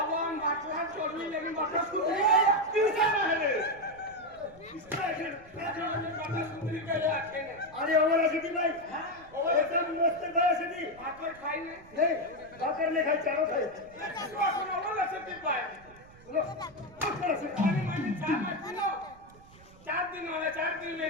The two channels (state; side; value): noise; right; rumble, 23 dB below the sound